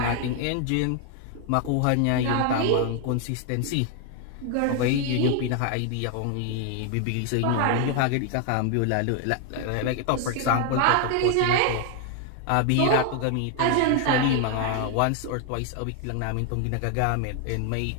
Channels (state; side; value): different; both; correlation 0.00